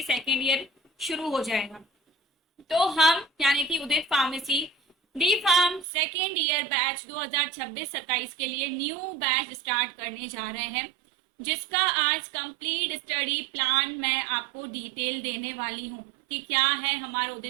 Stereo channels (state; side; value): drops out; left; at 5.9 s